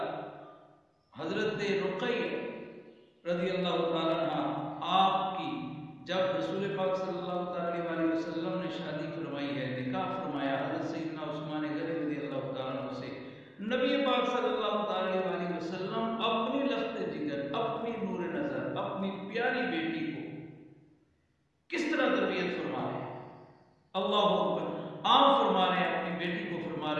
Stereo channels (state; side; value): identical; both; correlation 1.00